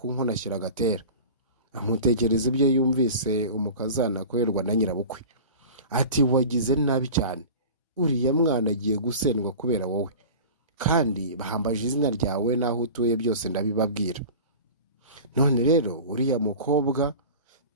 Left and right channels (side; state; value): both; inverted; correlation -0.36